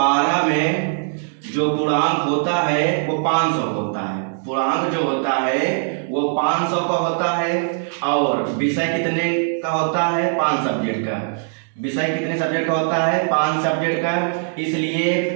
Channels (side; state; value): left; silent; 65 dB below the other